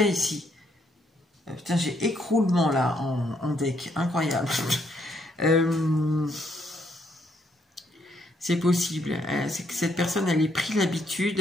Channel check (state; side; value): normal; both; correlation 0.73